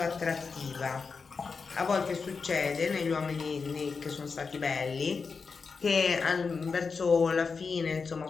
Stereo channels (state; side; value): quieter; right; 5.0 dB